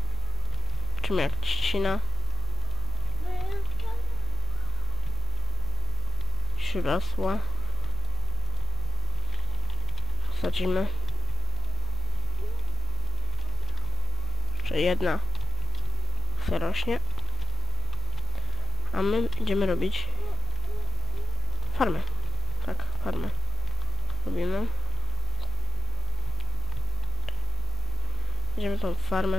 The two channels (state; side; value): quieter; right; 5.3 dB